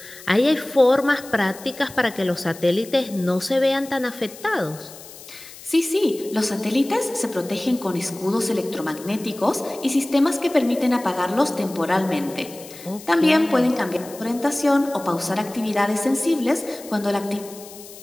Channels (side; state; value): left; noise; hiss, 17 dB below the sound